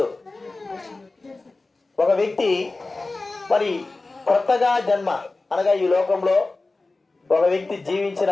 ఒక వ్యక్తి మరి కొత్తగా జన్మ అనగా ఈ లోకంలో ఒక వ్యక్తి జీవించిన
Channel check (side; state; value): right; quieter; 3.4 dB